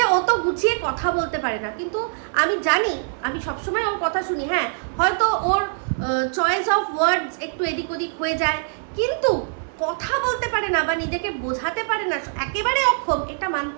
ও তো গুছিয়ে কথা বলতে পারে না। কিন্তু আমি জানি, আমি সবসময় ওর কথা শুনি, হ্যাঁ হয়তো ওর চয়েস অফ ওয়ার্ডস একটু এদিক ওদিক হয়ে যায়, কিন্তু কথা বলতে পারে না বা নিজেকে বোঝাতে পারে না, একেবারে অক্ষম, এটা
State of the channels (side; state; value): left; silent; digital silence